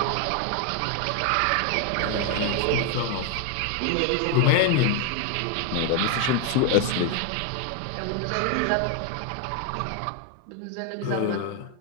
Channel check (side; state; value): both; different; correlation 0.01